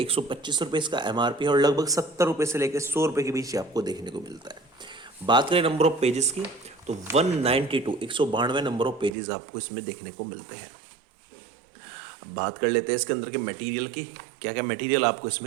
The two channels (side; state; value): left; drops out; at 9.1 s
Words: रुपये इसका MRP है और लगभग 70 रुपये से लेकर 100 रुपये के बीच आपको देखने को मिलता है। बात करें नंबर ऑफ पेजेस की तो 192 नंबर ऑफ पेजेस आपको इसमें देखने को मिलते हैं। अब बात कर लेते हैं इसके अंदर के मटेरियल की, क्या क्या मटेरियल आपको